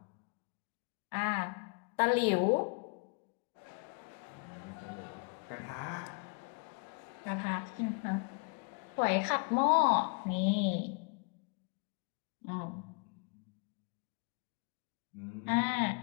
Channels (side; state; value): right; quieter; 35.8 dB